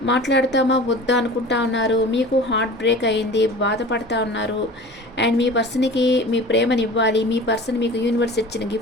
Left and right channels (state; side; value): normal; both; correlation 0.39